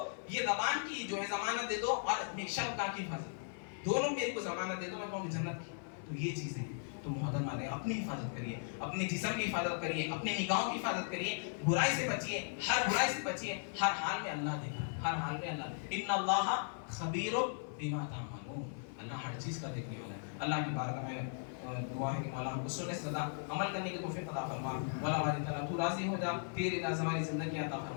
یہ زبان کی جو ہے ضمانت دے دو اور اپنی شرمگاہ کی حفاظت، دونوں میرے کو ضمانت دے دو، میں کہوں کہ جنت کی۔ تو یہ چیزیں تو محترم علیہ اپنی حفاظت کریے، اپنے جسم کی حفاظت کریے، اپنی نگاہوں کی حفاظت کریے، برائی سے بچیے، ہر برائی سے بچیے، ہر حال میں اللہ دیکھ رہا ہے، ہر حال میں اللہ، ان اللہ خبیر بما تعملون، اللہ ہر چیز کا دیکھنے والا ہے۔ اللہ کی بارگاہ میں دعا ہے کہ مولا ہم کو سننے سے زیادہ عمل کرنے کی توفیق عطا فرما، مولا باری تعالیٰ تو راضی ہو جا، تیرے رضا والی زندگی عطا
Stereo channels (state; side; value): silent; right; 53 dB below the other